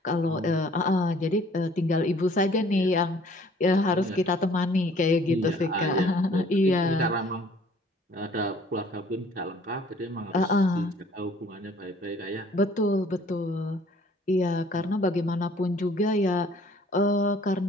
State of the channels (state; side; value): normal; both; correlation 0.56